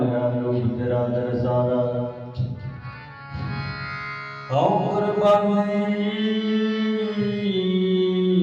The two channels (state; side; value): identical; both; correlation 1.00